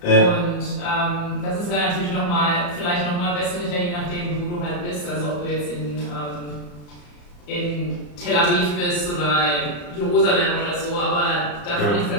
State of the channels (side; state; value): right; late; 34 ms